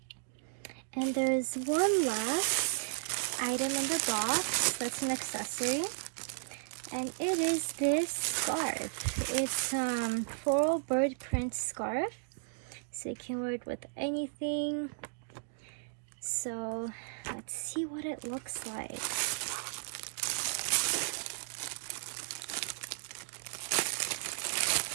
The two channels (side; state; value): left; silent; digital silence